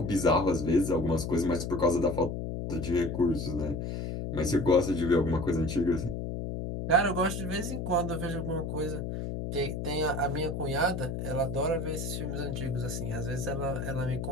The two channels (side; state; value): left; noise; hum, 4 dB below the sound